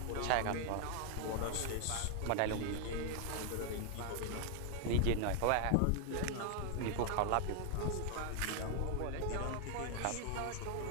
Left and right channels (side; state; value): both; different; correlation 0.00